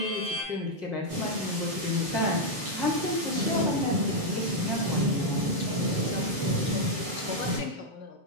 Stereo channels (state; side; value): late; left; 7.0 ms